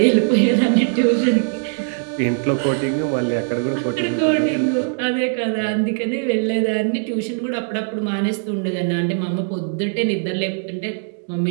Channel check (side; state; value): left; silent; 64 dB below the other